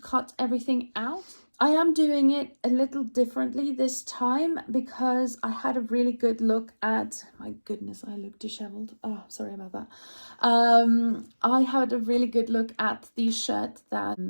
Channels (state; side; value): inverted; both; correlation -1.00